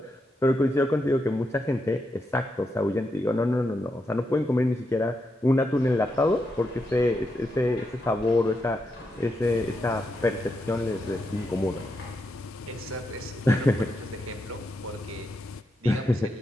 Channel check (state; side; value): normal; both; correlation 0.84